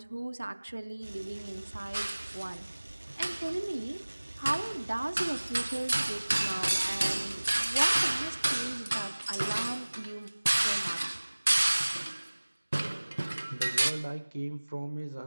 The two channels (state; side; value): inverted; both; correlation -1.00